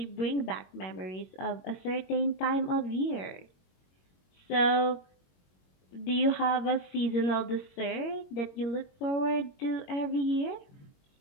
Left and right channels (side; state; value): right; late; 21 ms